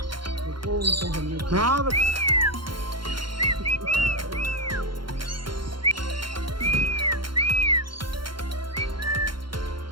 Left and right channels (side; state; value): left; late; 0.73 ms